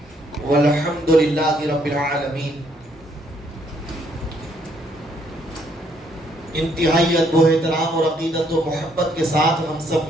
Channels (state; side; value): normal; both; correlation 0.69